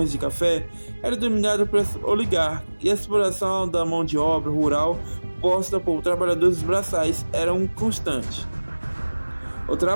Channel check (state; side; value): inverted; both; correlation -1.00